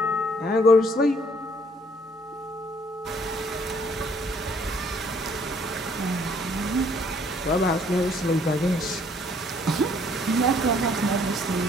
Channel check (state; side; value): normal; both; correlation 0.63